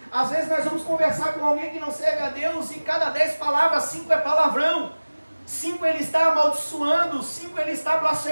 às vezes nós vamos conversar com alguém que não serve a Deus, e cada 10 palavras, 5 é palavrão, 5 ele está amaldiçoando, 5 ele está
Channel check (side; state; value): both; inverted; correlation -1.00